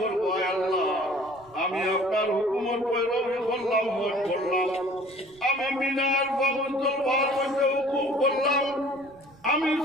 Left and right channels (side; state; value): right; noise; rumble, 27 dB below the sound